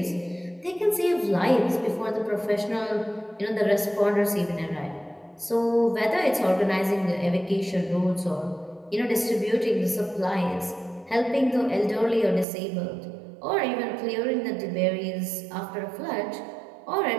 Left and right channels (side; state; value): left; drops out; at 12.5 s